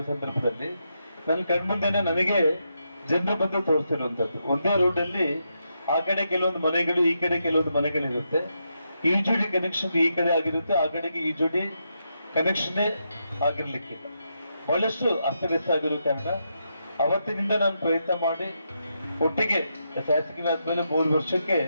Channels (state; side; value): inverted; both; correlation -0.83